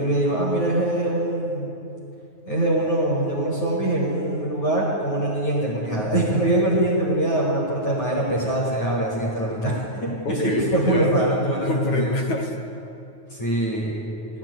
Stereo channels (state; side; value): late; right; 9.4 ms